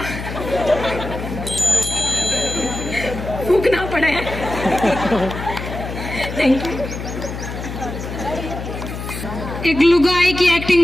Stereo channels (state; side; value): noise; left; hum, 7 dB below the sound